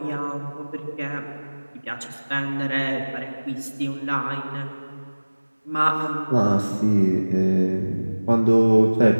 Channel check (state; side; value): inverted; both; correlation -1.00